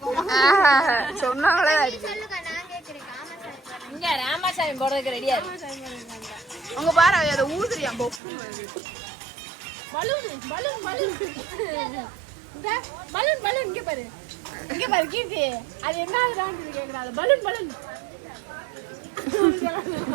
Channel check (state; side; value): drops out; left; at 8.2 s